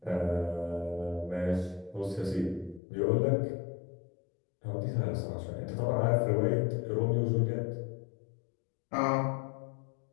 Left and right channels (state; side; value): drops out; right; at 2.8 s